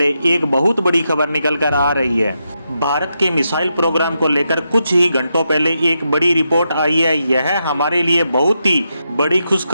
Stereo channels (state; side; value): inverted; both; correlation -0.84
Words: एक बहुत बड़ी खबर निकल कर आ रही है। भारत के मिसाइल प्रोग्राम को लेकर कुछ ही घंटों पहले एक बड़ी रिपोर्ट आई है। यह हमारे लिए बहुत ही बड़ी